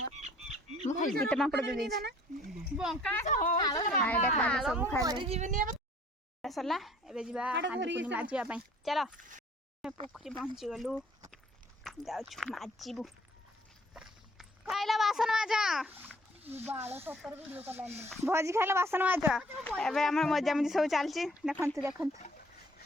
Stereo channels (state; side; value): normal; both; correlation 0.57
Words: मु खाइ के पांपड़ दे दे बंका हो आइडा खा सब खा ले सरला एबे जिबा हांडी माजिबा पई चलो पोखरी पहुंची गलु जाउछु माजिबु खाइला बासन माजा बाळ 70 वीडियो करलानी भोजी खाइला बासन माजा एबे हमर मजा मजी सब चलची देखंतु